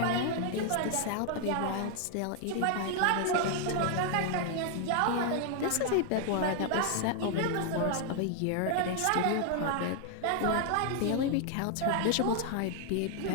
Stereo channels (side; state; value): both; different; correlation 0.00